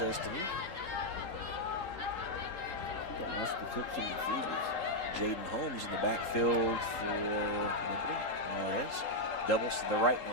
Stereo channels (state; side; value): late; right; 3.8 ms